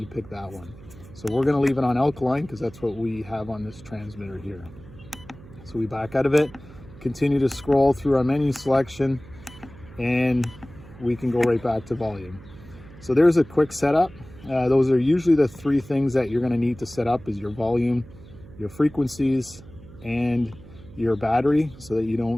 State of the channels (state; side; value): noise; right; hum, 19 dB below the sound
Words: pick that one. So we're going to leave it on alkaline because that's what we have on this transmitter here. So we back out of it, continue to scroll through our menu selection, and we can go right back to volume. So there's a quick setup. Those are usually the 3 things that you're going to need to set up: is your volume, your frequencies, and your battery, so that you